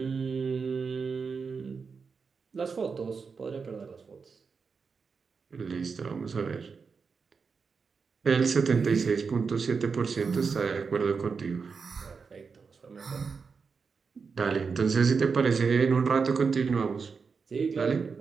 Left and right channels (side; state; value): left; quieter; 5.3 dB